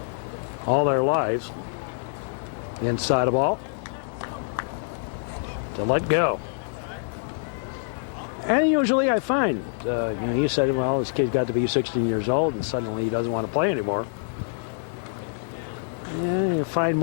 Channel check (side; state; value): right; silent; digital silence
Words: all their lives inside a ball to let go. And usually I find, you said, well, this kid's got to be 16 years old and suddenly he doesn't want to play anymore. And you find